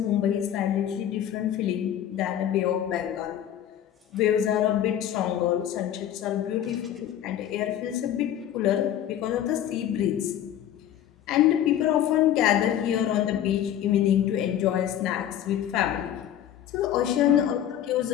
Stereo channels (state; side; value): quieter; right; 10.8 dB